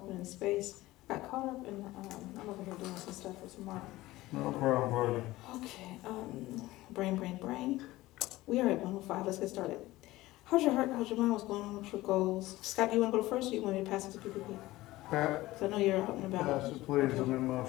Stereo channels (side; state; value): right; quieter; 17.8 dB